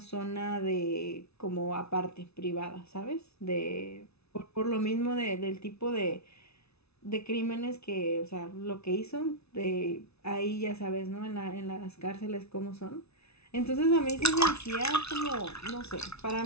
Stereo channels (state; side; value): late; right; 0.80 ms